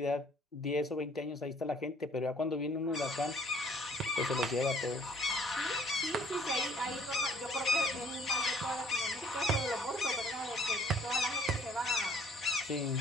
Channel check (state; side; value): normal; both; correlation 0.58